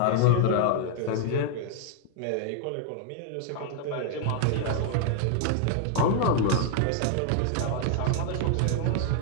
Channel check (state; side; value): different; both; correlation 0.00